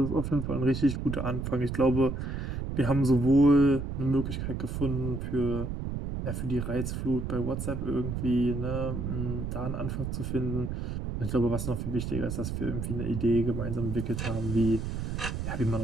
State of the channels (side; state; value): right; noise; rumble, 4 dB below the sound